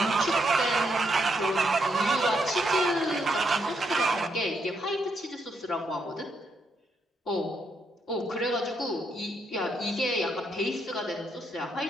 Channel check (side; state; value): both; normal; correlation 0.77